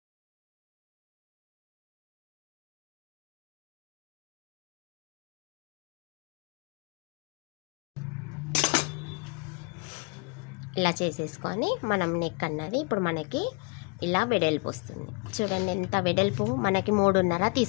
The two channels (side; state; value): right; quieter; 31.3 dB